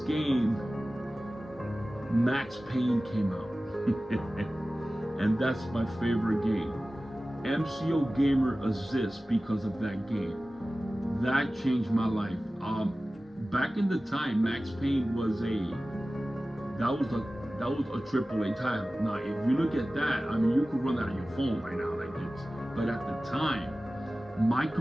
Max Payne, came out. And that's my favorite game. MCOGAMER27 because of that game. That changed my life. Back in the time, Max Payne was a AAA title. Now, if you look at that, I mean, you could run that on your phone right now, like this. But at the time, my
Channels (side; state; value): both; normal; correlation 0.96